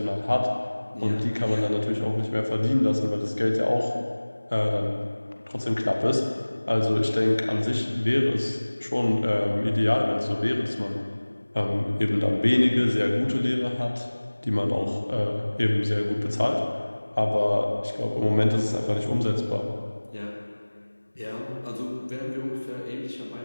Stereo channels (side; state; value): both; inverted; correlation -1.00